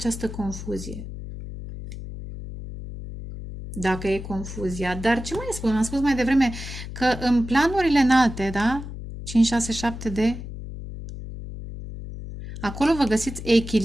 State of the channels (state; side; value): noise; left; hum, 10 dB below the sound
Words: confuzie. Dacă e confuzia. Dar ce mai spun? Am spus mai devreme că în planurile înalte, da? 5, 6, 7 de... Acolo vă găsiți